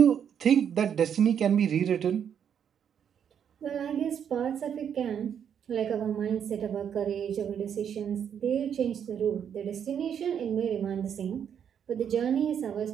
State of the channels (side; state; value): left; quieter; 8.3 dB